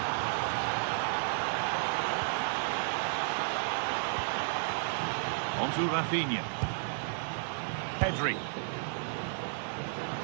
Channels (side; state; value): left; silent; digital silence